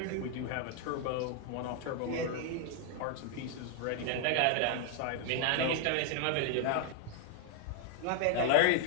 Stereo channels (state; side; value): different; both; correlation 0.00